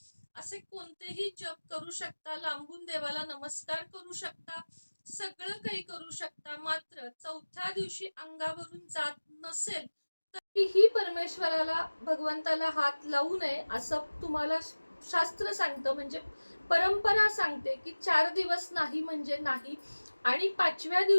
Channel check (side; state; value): both; inverted; correlation -1.00